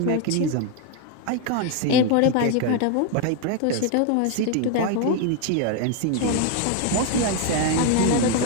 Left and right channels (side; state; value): both; different; correlation 0.01